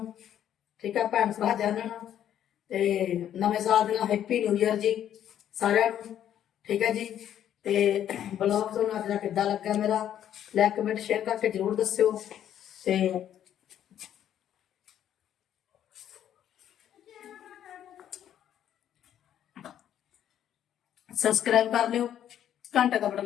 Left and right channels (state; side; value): quieter; right; 10.5 dB